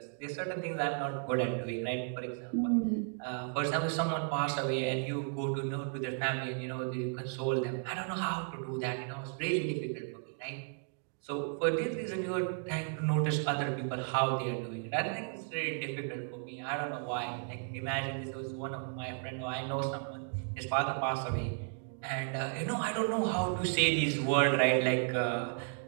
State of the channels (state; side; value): silent; left; 55 dB below the other